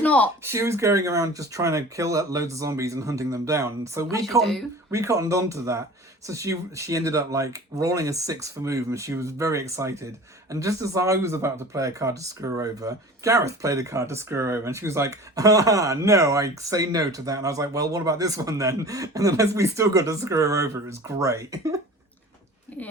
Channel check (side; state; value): both; normal; correlation 0.40